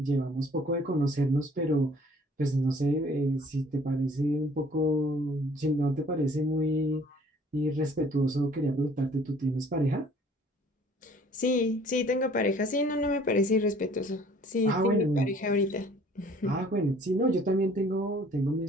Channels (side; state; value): both; normal; correlation 0.55